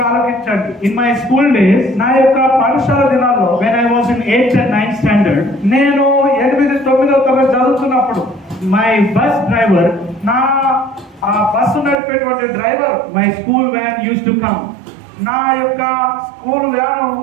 ఆలోచించండి. In my school days, నా యొక్క పాఠశాల దినాల్లో when I was in 8th and 9th standard, నేను 8, 9వ తరగతి చదువుతున్నప్పుడు my bus driver, నా ఆ బస్సు నడిపేటువంటి driver, my school van used to come. నా యొక్క స్కూల్ వ్యాను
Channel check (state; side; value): drops out; left; at 12.0 s